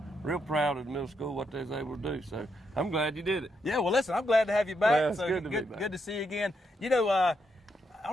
real proud of the middle school, what they was able to do. So I'm glad you did it. Yeah, well, listen, I'm glad to have you back. Well, it's so good to be back. Good to see you again. You know, I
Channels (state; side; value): normal; both; correlation 0.79